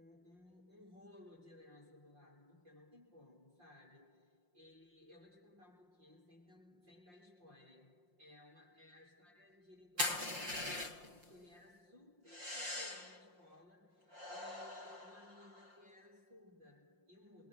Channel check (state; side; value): late; left; 5.6 ms